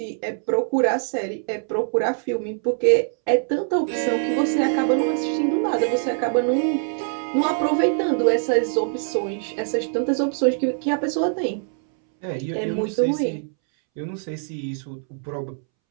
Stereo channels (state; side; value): silent; left; 63 dB below the other